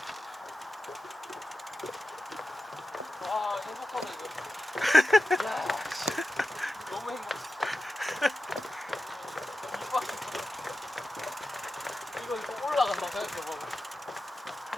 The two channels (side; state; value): both; normal; correlation 0.92